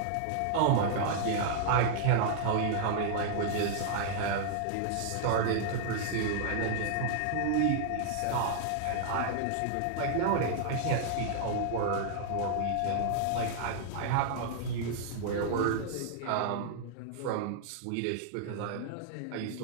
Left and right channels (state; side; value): different; both; correlation -0.01